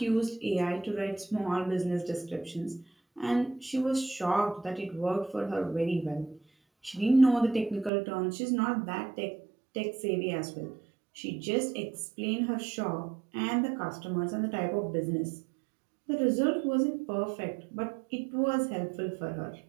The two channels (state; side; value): drops out; left; at 7.9 s